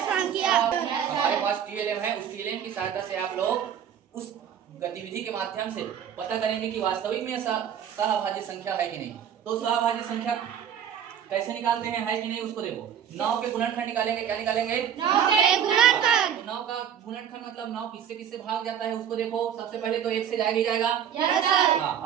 संख्या। हमारे पास टीएलएम है, उस टीएलएम की सहायता से आप लोग उस गतिविधि के माध्यम से पता करेंगे कि वास्तविक में सहाभाज्य संख्या है कि नहीं। तो सहाभाज्य संख्या कैसे निकालते हैं, है कि नहीं, उसको देखो। 9 के गुणनखंड निकालेंगे, क्या निकालेंगे? 9 के गुणनखंड। 9 का गुणनखंड मतलब 9 किससे किससे भाग जाता है उसको देखो। सबसे पहले तो 1 से जाएगा ही जाएगा। Yes sir. हाँ,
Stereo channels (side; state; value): left; quieter; 8.9 dB